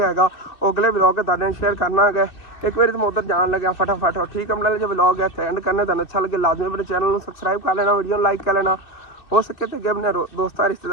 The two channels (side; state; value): right; late; 2.6 ms